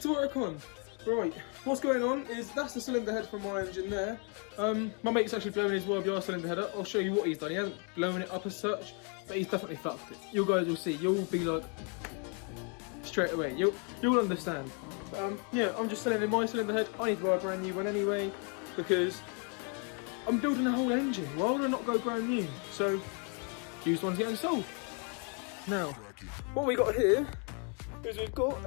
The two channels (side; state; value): right; quieter; 37.7 dB